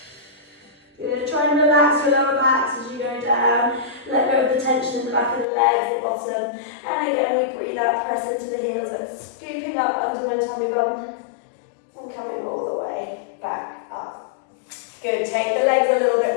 Good. Try and relax your lower backs as you go down. Let go of the tension in the back of the legs, the bottom. And again, we breathe out, press into the heels and scooping up under my tummy button and coming all the way back up. Good. Take the legs a little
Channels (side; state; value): right; drops out; at 5.5 s